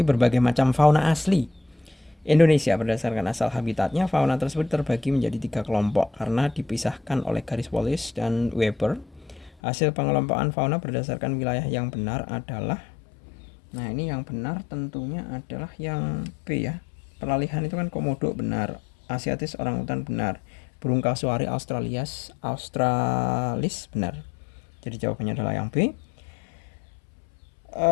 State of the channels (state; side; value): drops out; right; at 9.5 s